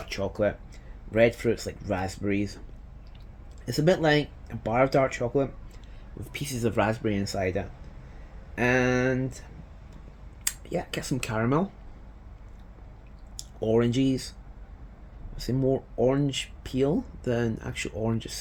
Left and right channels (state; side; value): identical; both; correlation 1.00